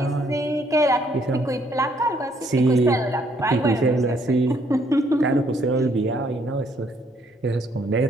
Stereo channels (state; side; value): normal; both; correlation 0.68